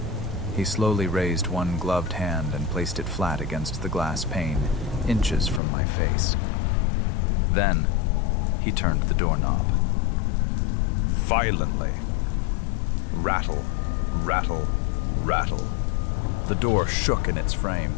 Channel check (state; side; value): drops out; right; at 5.6 s